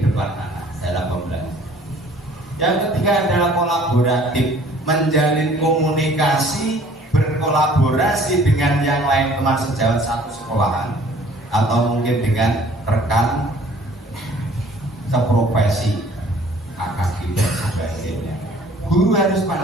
depan anak dalam pembelajaran. Yang ketiga adalah kolaboratif, menjalin komunikasi, berkolaborasi dengan yang lain teman sejawat satu sekolahan atau mungkin dengan rekan seprofesi, kakak dan sebagainya. Guru harus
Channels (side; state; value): both; normal; correlation 0.54